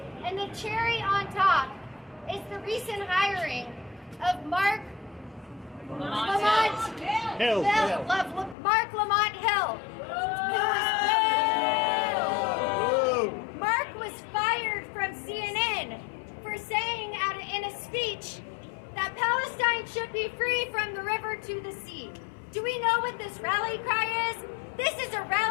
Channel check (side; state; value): right; drops out; at 8.6 s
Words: And the cherry on top is the recent hiring of Mark Lamont Hill. Mark was fired from CNN for saying in a speech that Palestine should be free from the river to the sea. Do we know what this rally cry is? This is a